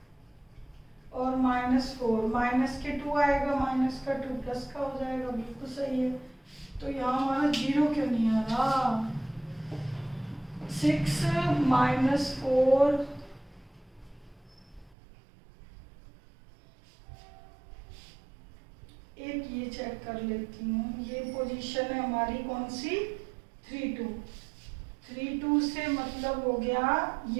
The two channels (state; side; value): drops out; left; at 15.0 s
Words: और माइनस 4, माइनस के 2 आएगा, माइनस का 2 प्लस का हो जाएगा, बिल्कुल सही है। तो यहाँ हमारा 0 क्यों नहीं आ रहा? 6 माइनस 4 एक ये चेक कर लेती हूँ, ये पोजीशन है हमारी कौन सी? 3 2। 3 2 से मतलब हो गया